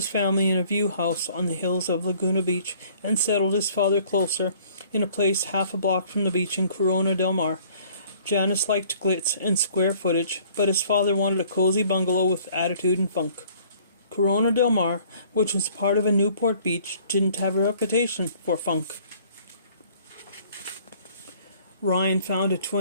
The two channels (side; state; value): both; inverted; correlation -0.56